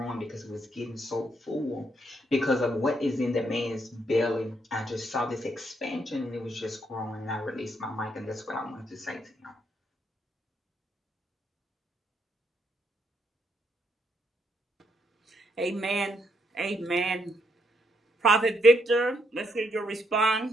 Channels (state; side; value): normal; both; correlation 0.75